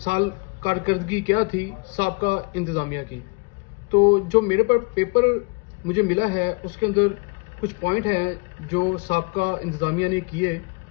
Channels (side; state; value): right; quieter; 31.8 dB